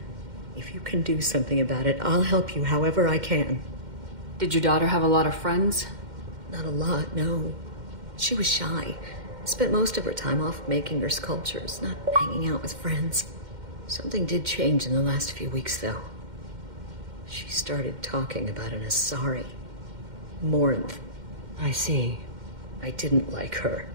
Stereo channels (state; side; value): late; left; 2.1 ms